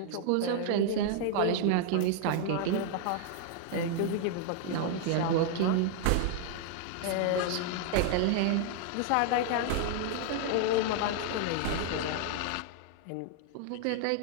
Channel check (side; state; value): both; different; correlation 0.00